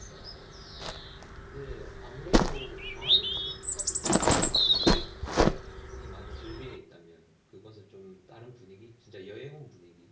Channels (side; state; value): both; identical; correlation 1.00